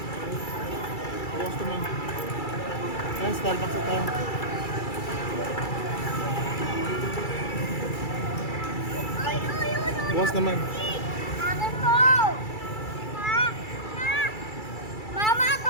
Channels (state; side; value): late; right; 2.3 ms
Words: Bukas naman. Ayan, Starbucks na tayo. Ay, ay, ay, ay. Bukas naman. Akin po. Ma, ma. Mama,